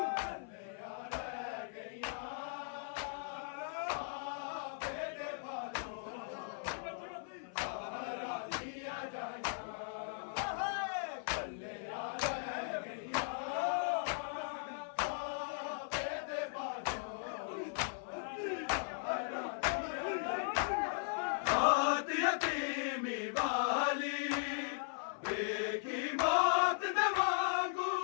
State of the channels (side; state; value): right; silent; 52 dB below the other